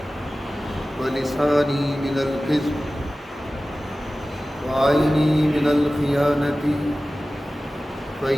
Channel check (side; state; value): both; normal; correlation 0.96